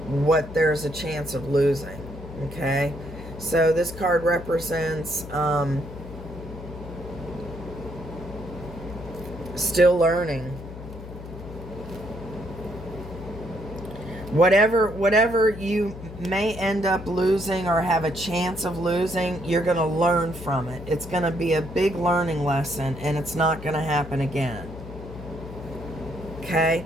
what there's a chance of losing. Okay, so this card represents still learning. Whatever you may end up losing or have a chance of losing, you're going to learn from it. It's going to be a big learning lesson, and it's not going to happen again. Okay?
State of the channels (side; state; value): left; noise; hum, 12 dB below the sound